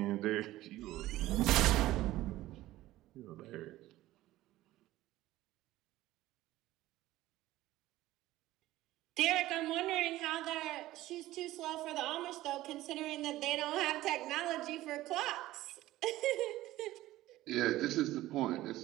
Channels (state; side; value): quieter; left; 16.1 dB